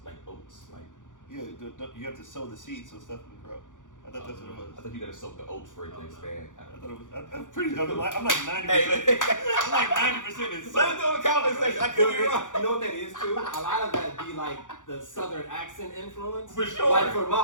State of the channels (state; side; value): late; right; 0.87 ms